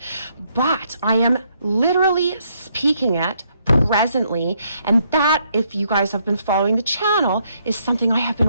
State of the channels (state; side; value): inverted; both; correlation -0.72